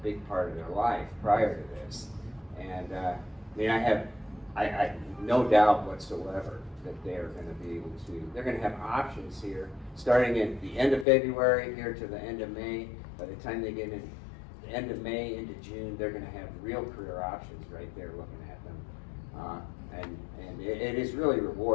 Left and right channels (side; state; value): right; drops out; at 11.1 s